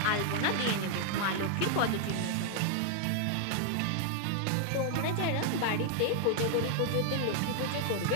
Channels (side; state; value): both; different; correlation 0.00